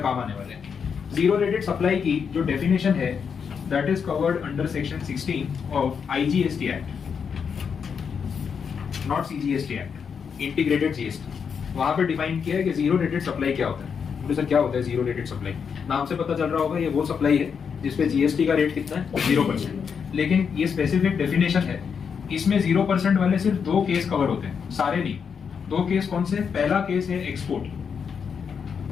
काम आने वाले हैं। जीरो रेटेड सप्लाई की जो डेफिनेशन है that is covered under section 16 of IGST act, not CGST act, integrated GST. वहां पे डिफाइन किया है कि जीरो रेटेड सप्लाई क्या होता है। बोले सर क्या होता है जीरो रेटेड सप्लाई? नाम से पता चल रहा होगा ये वो सप्लाई है जिसपे जीएसटी का रेट कितना है 0%। लेकिन ये स्पेसिफिक डेफिनेशन है, इसमें 0% वाले सिर्फ दो केस कवर होते हैं, सारे नहीं। दो केस कौन से? पहला केस है एक्सपोर्ट।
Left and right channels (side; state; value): right; quieter; 6.6 dB